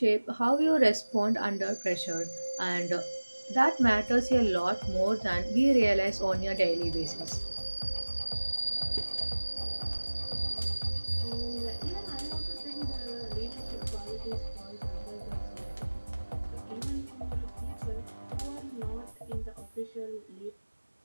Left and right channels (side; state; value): both; inverted; correlation -1.00